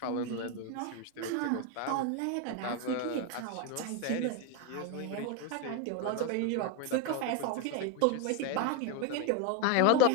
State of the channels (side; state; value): both; different; correlation 0.02